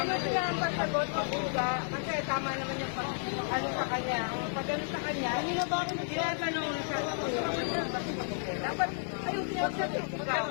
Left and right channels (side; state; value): right; silent; 56 dB below the other